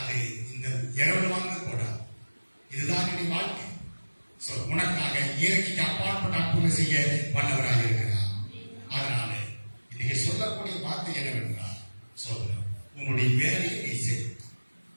இந்த இரவு வாங்க கூடாது. இதுதான் என்னுடைய வாழ்க்கை. உனக்காக இயற்கைக்கு அப்பால் அப்பாற்பட்ட அற்புதம் செய்ய வல்லவராக இருக்கிறார். அதனால இன்னைக்கு சொல்லக்கூடிய வார்த்தை என்னவென்றால், சோதரம் உன்னுடைய வேலையை நீ செய்.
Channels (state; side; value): inverted; both; correlation -1.00